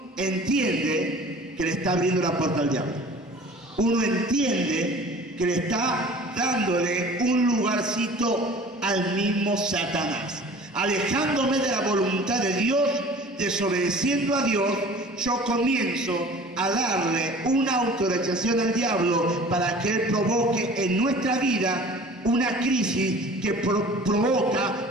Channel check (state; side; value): normal; both; correlation 0.45